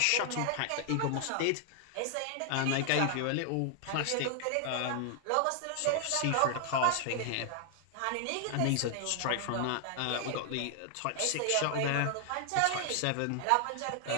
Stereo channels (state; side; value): different; both; correlation 0.00